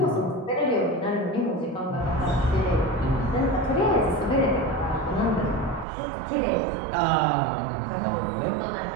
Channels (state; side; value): drops out; left; at 5.9 s